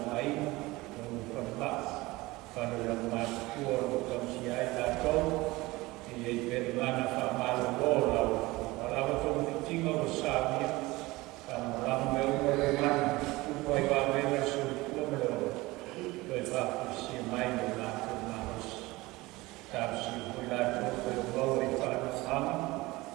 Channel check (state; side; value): quieter; left; 20.8 dB